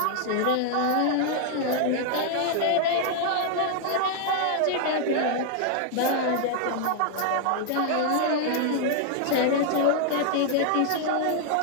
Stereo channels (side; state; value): both; different; correlation 0.00